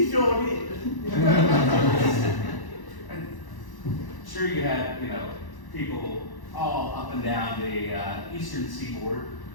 sure did. Sure, you had, people all up and down the eastern seaboard.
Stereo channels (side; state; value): right; late; 1.0 ms